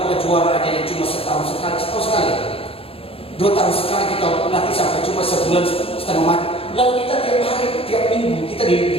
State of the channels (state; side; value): late; right; 0.27 ms